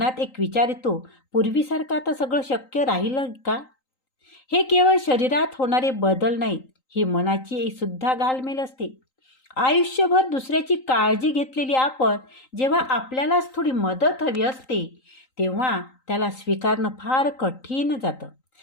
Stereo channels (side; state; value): right; late; 3.9 ms